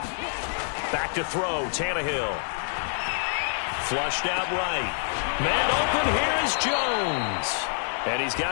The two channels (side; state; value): right; silent; digital silence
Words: Back to throw, Tannehill. Flushed out right. Man open, here is Jones. And he's